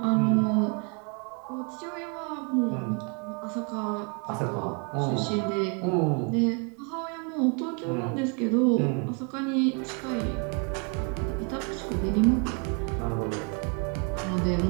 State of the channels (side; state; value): left; quieter; 35.9 dB